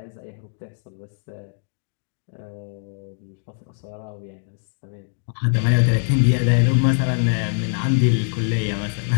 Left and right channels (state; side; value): silent; right; digital silence